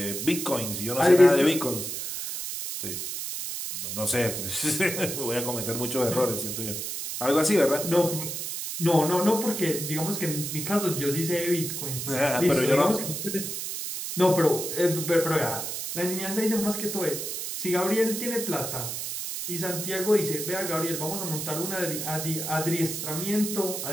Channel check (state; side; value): noise; right; hiss, 5 dB below the sound